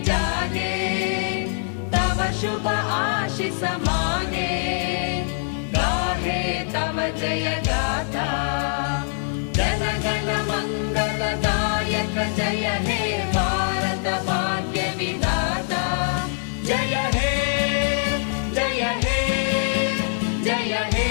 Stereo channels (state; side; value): silent; right; digital silence